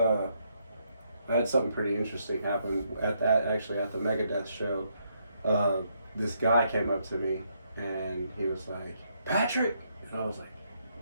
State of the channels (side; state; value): both; inverted; correlation -0.75